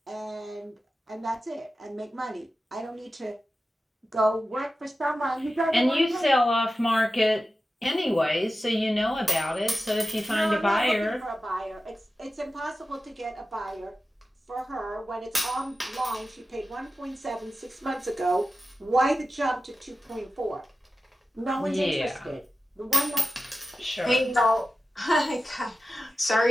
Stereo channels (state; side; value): normal; both; correlation 0.93